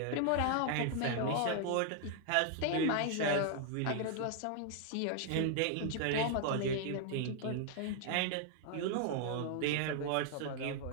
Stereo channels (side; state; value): both; different; correlation 0.00